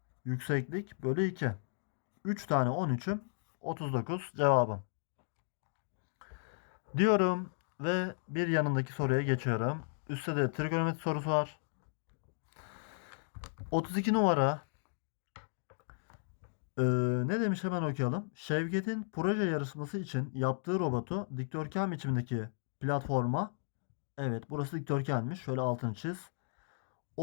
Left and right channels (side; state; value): right; silent; digital silence